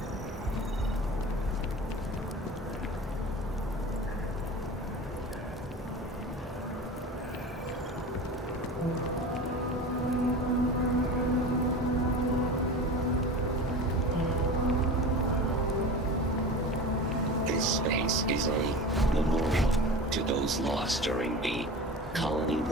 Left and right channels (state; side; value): normal; both; correlation 0.32